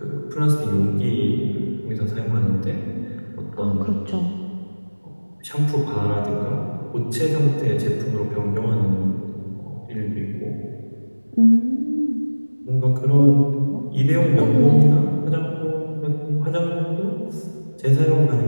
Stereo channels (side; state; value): both; inverted; correlation -1.00